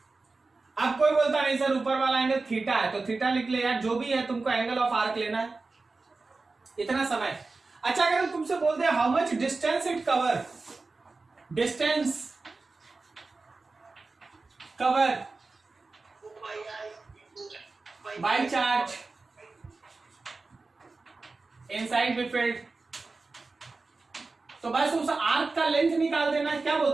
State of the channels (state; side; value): quieter; left; 3.8 dB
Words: अब कोई बोलता नहीं सर ऊपर वाला एंगल थीटा है, तो थीटा लिख ले यार, जो भी है तुमको एंगल ऑफ आर्क लेना है, इतना समय। अच्छा अगर हम तुमसे बोलते हैं how much distance it cover, distance cover by charge inside B field. तो बस उस आर्क का लेंथ निकाल देना। क्या